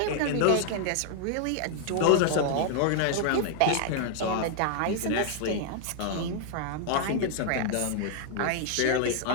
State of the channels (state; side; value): different; both; correlation 0.00